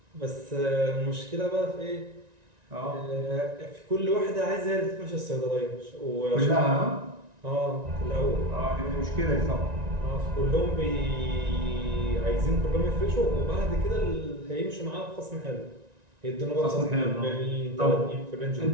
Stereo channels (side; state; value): left; late; 1.9 ms